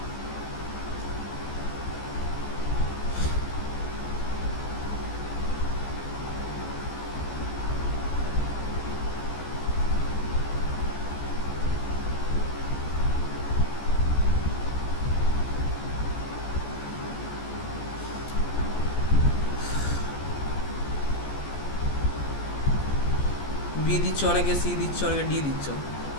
বি দিচ্ছ, অনেকে সি দিচ্ছ, অনেকে ডি দিচ্ছ।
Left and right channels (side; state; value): right; late; 14 ms